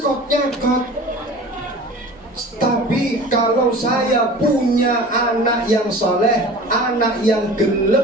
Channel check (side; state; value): both; normal; correlation 0.40